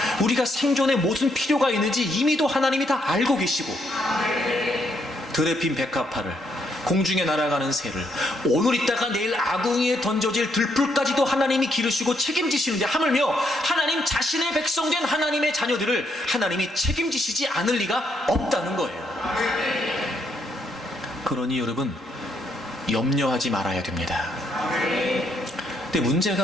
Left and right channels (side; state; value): both; normal; correlation 0.74